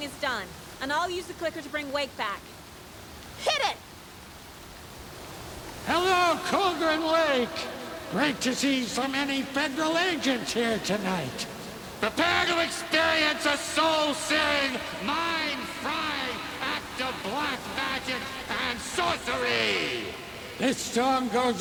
is done, and I'll use the clicker to bring Wake back. Hit it! Hello, Colgren Lake. Great to see so many federal agents here tonight. Prepare to experience a soul-searing, mind-frying act of black magic and sorcery. This song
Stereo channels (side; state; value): both; identical; correlation 1.00